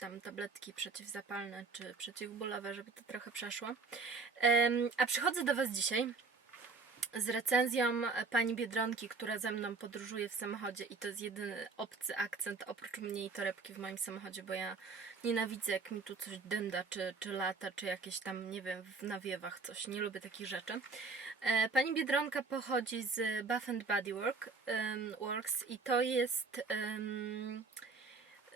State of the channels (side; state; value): left; quieter; 4.3 dB